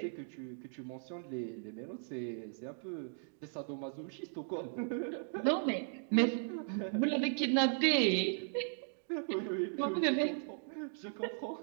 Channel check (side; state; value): left; silent; digital silence